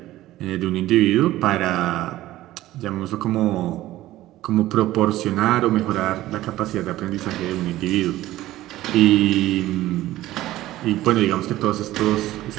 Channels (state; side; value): quieter; left; 15.5 dB